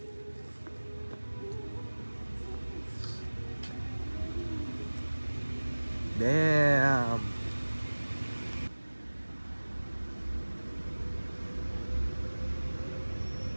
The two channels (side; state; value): both; inverted; correlation -1.00